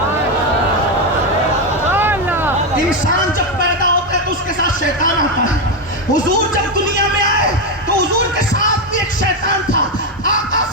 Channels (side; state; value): both; normal; correlation 0.08